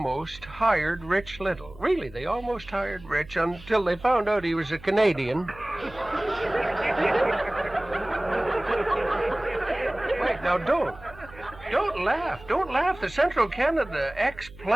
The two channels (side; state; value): right; noise; hum, 20 dB below the sound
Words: hired Rich Little. Really, they almost hired Rich until they found out he was a Canadian. Wait, now don't laugh. Don't laugh. The Central Canada